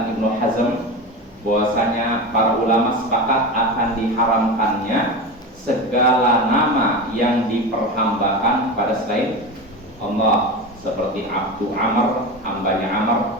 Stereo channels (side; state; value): both; normal; correlation 0.24